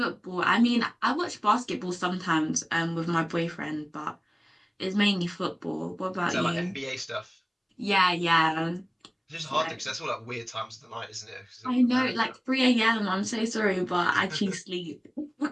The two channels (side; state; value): both; identical; correlation 1.00